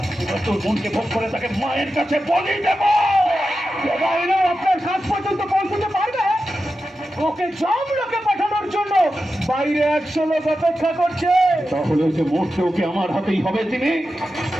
তোর মনকে ভোগ করে তাকে মায়ের কাছে বলি দেব। এরা আপনার কাজ পর্যন্ত পৌঁছতে পারবে? ওকে জমলোকে পাঠানোর জন্য বাইরে 100 লোক অপেক্ষা করছে। তাহলে যে মরতে ওকে আমার হাতেই হবে। তিনি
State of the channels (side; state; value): both; normal; correlation 0.91